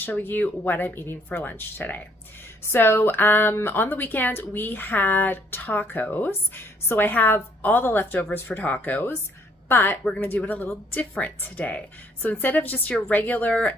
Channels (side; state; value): both; normal; correlation 0.64